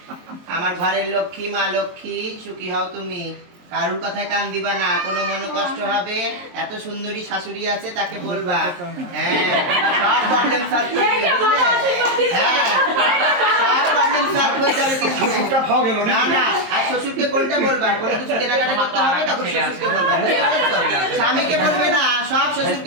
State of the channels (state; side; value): late; left; 23 ms